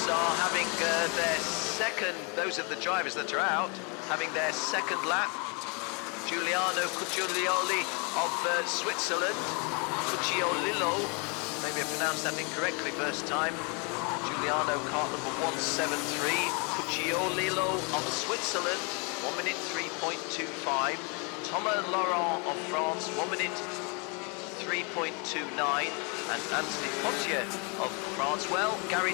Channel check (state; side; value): quieter; right; 33.7 dB